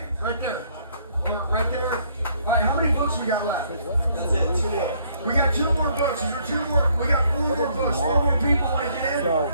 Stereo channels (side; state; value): both; inverted; correlation -0.65